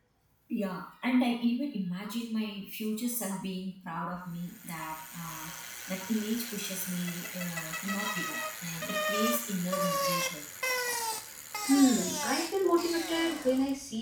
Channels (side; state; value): both; identical; correlation 1.00